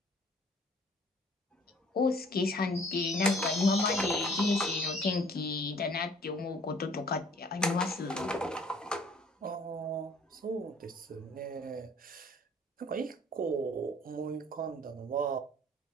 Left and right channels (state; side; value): normal; both; correlation 0.56